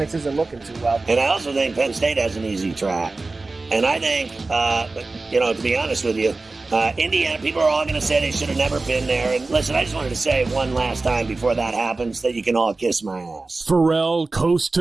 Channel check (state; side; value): quieter; left; 3.5 dB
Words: isn't looking too well. And I also think Penn State has an easy track. And I think, to be honest with you, Indiana, people are all going to say they should have never been there. And listen, I just wanted to say one last time before that happens that you can all kiss my ass. Pharrell Coast